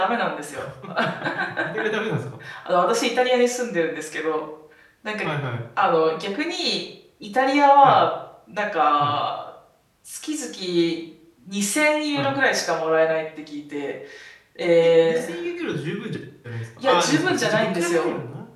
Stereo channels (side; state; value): both; identical; correlation 1.00